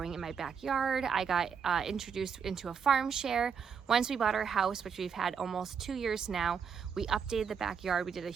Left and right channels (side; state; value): left; quieter; 6.7 dB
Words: in my backyard. I got introduced into a farm share once we bought our house, which we've had almost 2 years now. We updated the backyard. We did a